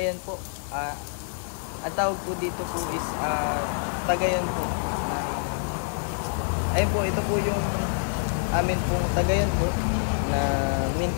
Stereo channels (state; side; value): silent; right; digital silence